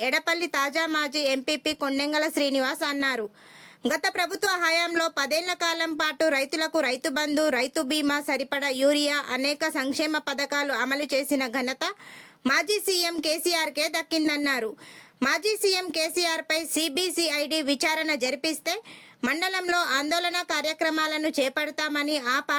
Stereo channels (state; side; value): identical; both; correlation 1.00